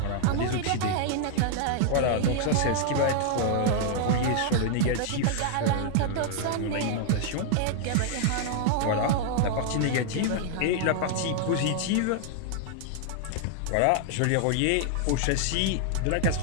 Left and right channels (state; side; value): different; both; correlation 0.00